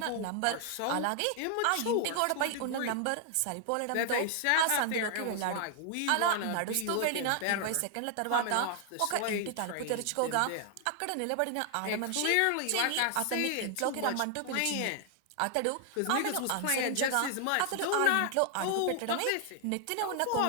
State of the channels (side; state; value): both; different; correlation 0.00